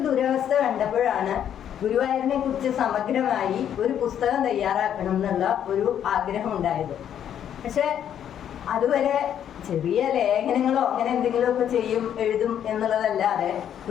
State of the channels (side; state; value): right; quieter; 9.6 dB